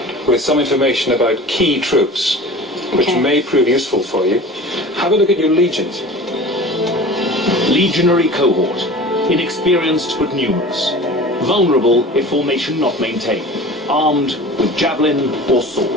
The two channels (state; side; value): normal; both; correlation 0.39